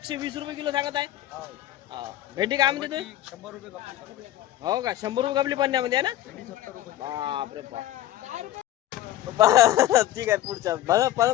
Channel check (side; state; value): right; quieter; 13.6 dB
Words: रुपये किलो सांगत आहे। भेंडी काय म्हणते तुम्ही? 100 रुपये खपली। हो का, 100 रुपये कपली पन्न्यामध्ये आहे ना? बापरे बाप ठीक आहे पुढच्या